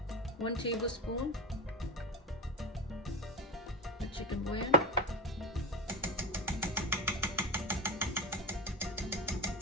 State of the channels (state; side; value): normal; both; correlation 0.22